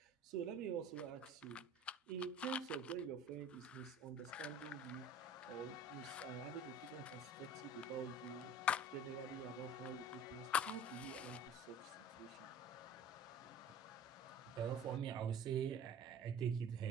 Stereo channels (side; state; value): both; normal; correlation 0.43